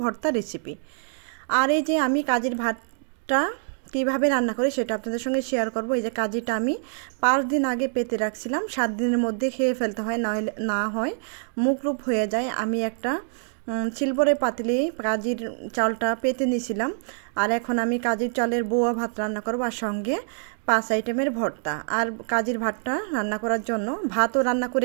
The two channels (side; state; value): left; silent; digital silence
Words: ভর্তা রেসিপি। আর এই যে আমি কাজির ভাতটা কীভাবে রান্না করি সেটা আপনাদের সঙ্গে শেয়ার করব। এই যে কাজিটা আমি 5 দিন আগে পেতে রাখছিলাম, 7 দিনের মধ্যে খেয়ে ফেলতে হয়, না হয় মুখরূপ হয়ে যায়। আমি একটা সিলভারের পাতিলে কাজির চালটা পেতে নিয়েছিলাম। আর এখন আমি কাজির চালের বোয়া ভাত রান্না করব, আর সঙ্গে 5 আইটেমের ভর্তা। আর কাজির ভাতটা রান্না করার জন্য ভাতও রান্না